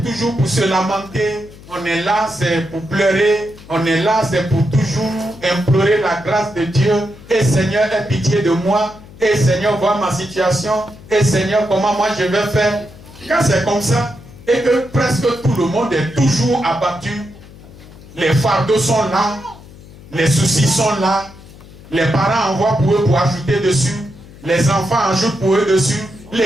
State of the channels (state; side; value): noise; left; hum, 20 dB below the sound